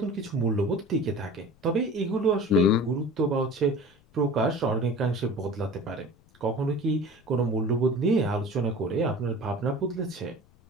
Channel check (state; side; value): noise; left; rumble, 30 dB below the sound